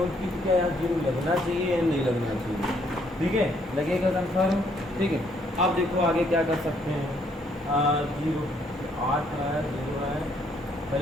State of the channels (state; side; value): normal; both; correlation 0.69